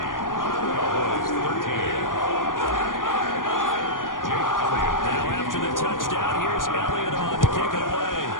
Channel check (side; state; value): right; late; 0.89 ms